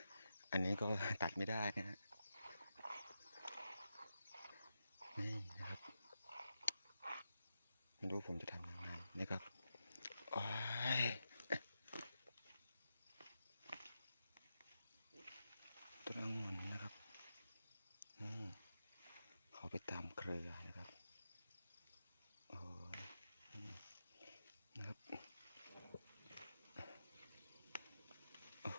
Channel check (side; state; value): both; inverted; correlation -0.88